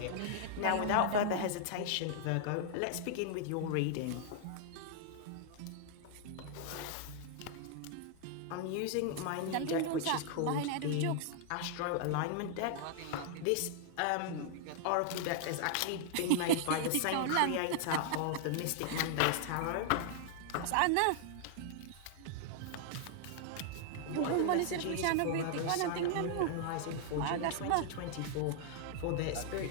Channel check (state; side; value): different; both; correlation -0.01